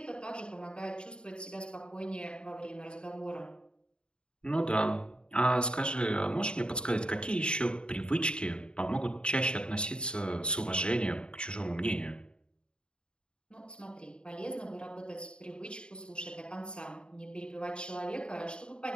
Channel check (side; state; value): right; late; 0.051 ms